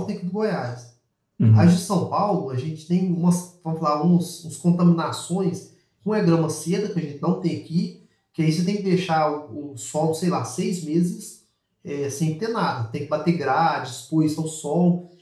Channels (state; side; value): identical; both; correlation 1.00